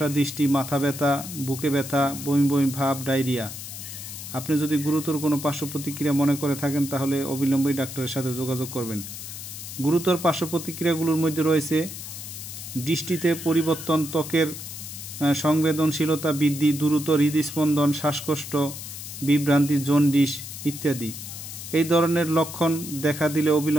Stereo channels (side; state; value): left; noise; hiss, 10 dB below the sound